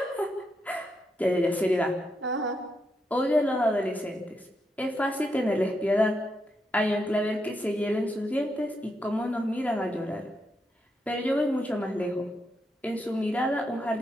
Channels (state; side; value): normal; both; correlation 0.82